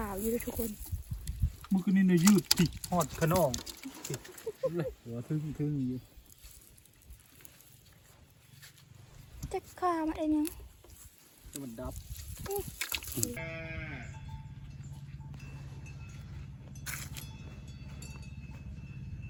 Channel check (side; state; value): both; identical; correlation 1.00